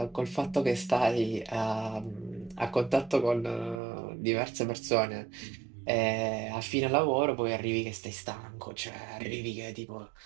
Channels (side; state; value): left; drops out; at 3.8 s